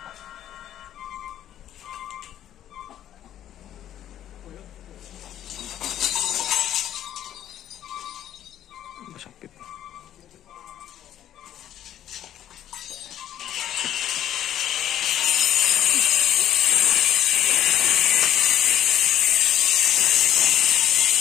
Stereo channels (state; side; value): quieter; right; 11.4 dB